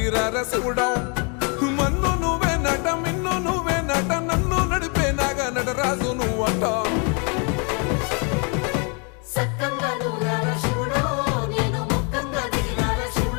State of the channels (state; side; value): quieter; right; 35.6 dB